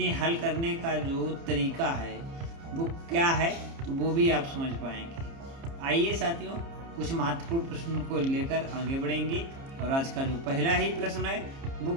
हल करने का जो तरीका है वो क्या है तो वो भी आप समझ पाएंगे। आइए साथियों, कुछ महत्वपूर्ण प्रश्नों को लेकर आगे बढ़ेंगे और आज का जो पहला ही प्रश्न है वो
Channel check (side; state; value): left; late; 30 ms